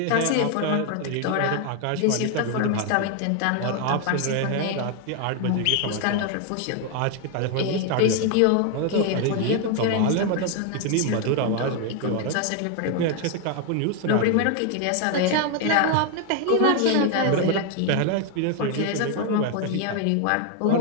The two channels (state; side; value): different; both; correlation 0.01